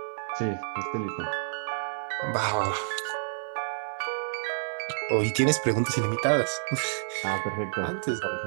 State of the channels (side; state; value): left; silent; digital silence